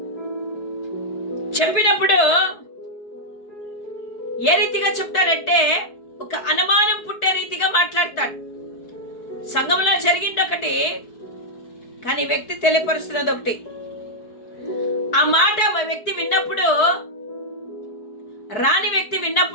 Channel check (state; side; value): late; right; 4.6 ms